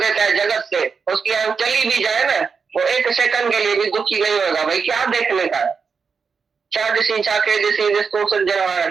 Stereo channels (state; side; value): quieter; left; 5.5 dB